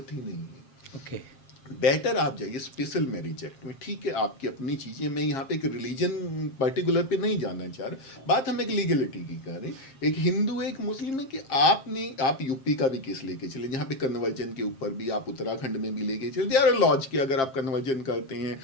ही नहीं है। ओके। बेटर आप जाइए स्पेशल मैरिज एक्ट में। ठीक है, आपकी अपनी चीज़ें, मैं यहाँ पे एक रिलीजन पर्टिकुलर पे नहीं जाना चाह रहा, बात हम एक लीगलिटी की कर रहे हैं। एक हिंदू है, एक मुस्लिम है, कि आप यूपी का भी केस लेके चले जहाँ पे कन्वर्जन के ऊपर भी, आप उत्तराखंड में भी लेके चले, दे आर लॉज के अगर आप कन्वर्जन करते हैं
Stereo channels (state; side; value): late; right; 7.5 ms